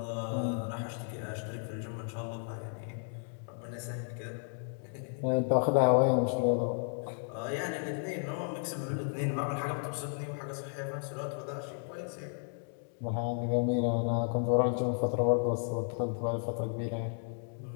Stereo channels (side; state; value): right; silent; 55 dB below the other